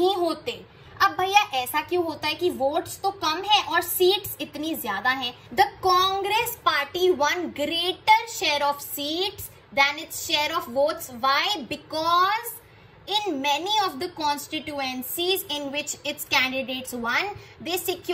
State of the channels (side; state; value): both; identical; correlation 1.00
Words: होते। अब भैया ऐसा क्यों होता है कि वोट्स तो कम है और सीट्स इतनी ज्यादा हैं? The Congress party won greater share of seats than its share of votes. Why? Because in many of the constituencies in which its candidates won, they